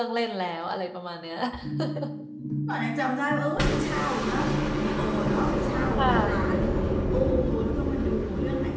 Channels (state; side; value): identical; both; correlation 1.00